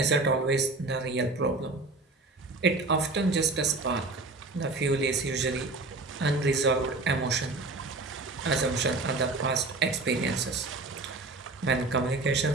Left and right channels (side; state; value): left; quieter; 3.4 dB